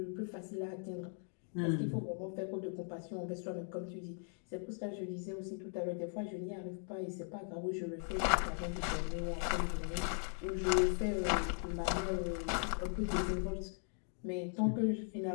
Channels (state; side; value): silent; right; 52 dB below the other